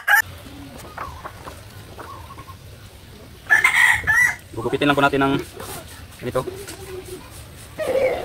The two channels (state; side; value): identical; both; correlation 1.00